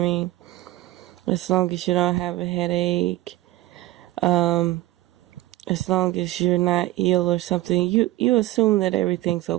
mean? As long as you don't have a headache, as long as you're not ill or something, you assume that everything's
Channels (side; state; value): left; quieter; 16.7 dB